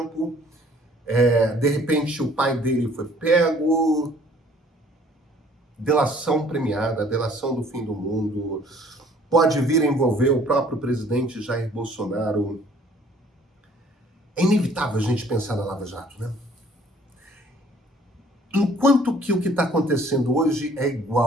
de repente o pai dele foi pego, delação premiada, delação do fim do mundo, pode vir a envolver o próprio presidente Jair Bolsonaro. É inevitável a gente pensar na Lava Jato, né? Enquanto que o que está acontecendo hoje é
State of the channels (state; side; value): normal; both; correlation 0.57